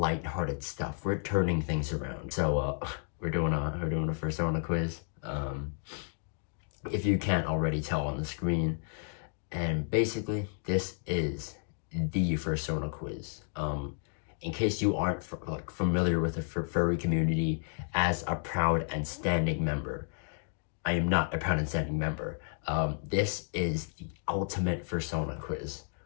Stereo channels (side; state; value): right; silent; 56 dB below the other